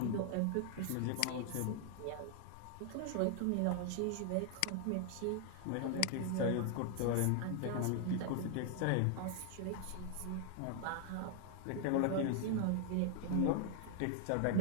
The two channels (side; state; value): both; different; correlation 0.00